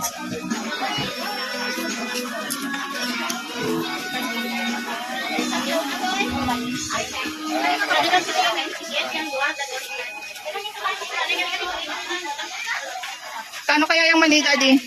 Kano kaya yung maliit, Daddy?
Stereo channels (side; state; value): both; identical; correlation 1.00